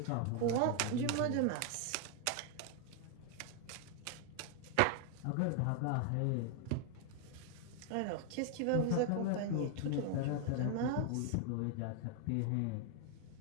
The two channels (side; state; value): both; different; correlation 0.00